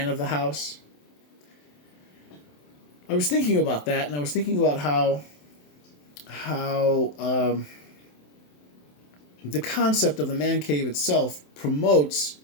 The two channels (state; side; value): late; right; 27 ms